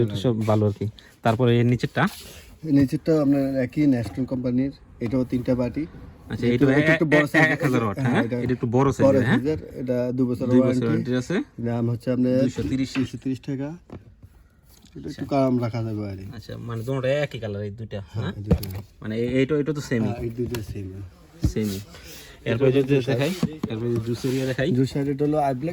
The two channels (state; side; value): identical; both; correlation 1.00